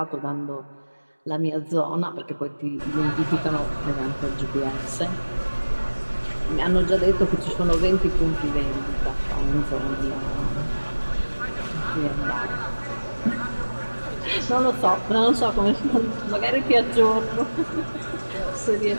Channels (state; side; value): inverted; both; correlation -1.00